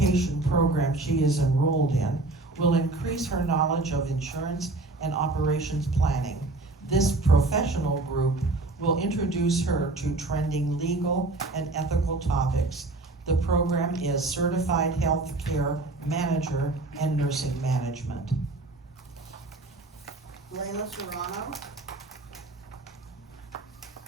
program she is enrolled in will increase her knowledge of insurance and operations planning. This professional group will introduce her to trending legal and ethical topics. The program is Certified Healthcare Manager and Nursing Management. Layla Serrano.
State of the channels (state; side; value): quieter; left; 3.1 dB